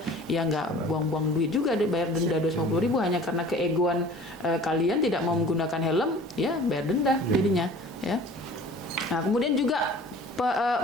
Ya nggak buang-buang duit juga deh bayar denda 250.000 hanya karena keegoan kalian tidak mau menggunakan helm, ya bayar denda jadinya, ya. Nah, kemudian juga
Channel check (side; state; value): both; normal; correlation 0.46